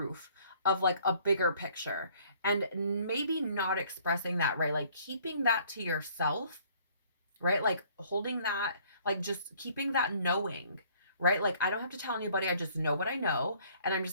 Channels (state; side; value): inverted; both; correlation -0.59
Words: of like a bigger picture, and maybe not expressing that, right? Like keeping that to yourself, right? Like holding that, like just keeping that knowing, right? Like I don't have to tell anybody, I just know what I know, and I'm